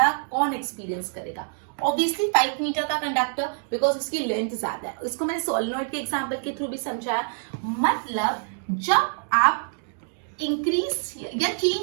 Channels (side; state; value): left; silent; digital silence